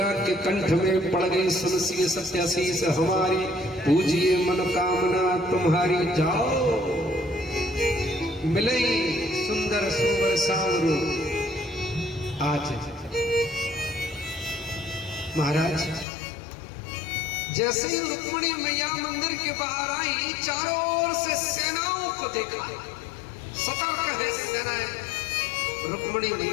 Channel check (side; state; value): right; drops out; at 16.1 s